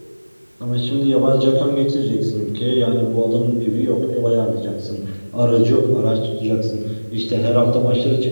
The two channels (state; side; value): inverted; both; correlation -1.00